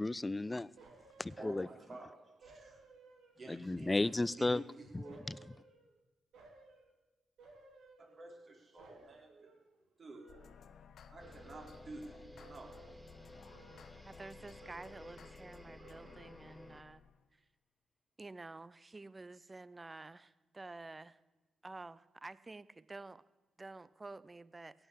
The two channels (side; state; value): both; normal; correlation 0.97